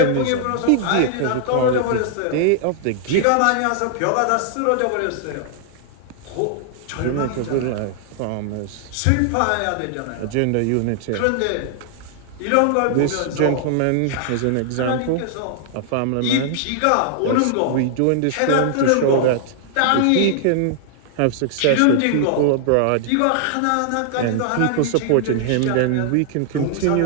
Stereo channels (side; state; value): both; different; correlation -0.01